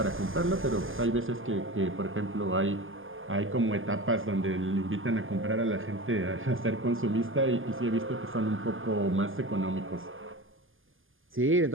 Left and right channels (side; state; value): left; late; 0.59 ms